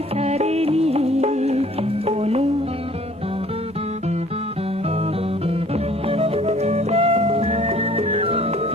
সারে নি কোনো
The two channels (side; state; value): both; normal; correlation 0.55